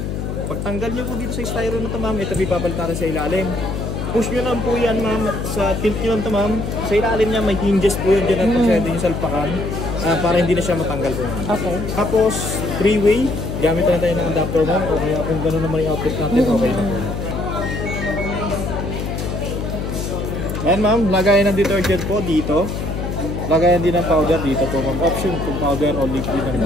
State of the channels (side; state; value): left; noise; hum, 4 dB below the sound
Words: Pagtanggal nyo po dito sa styro na ito ma'am, ito pipapalitan sa ilalim. Push nyo lang po yan ma'am, sa tilt nyo lang ito ma'am. Sa ilalim niya may hinges po yun dyan at pwede nyo salpakan para hindi na siya matanggal po ma'am. Okay. Tapos, three-way, gamit na tayo ng adapter ma'am, o kaya kung gano'n naman yung output natin, okay na po. Ayan ma'am, lagayan ng detergent po dito. Lagayan din ng powder dito po ma'am. Option kung powder o liquid ang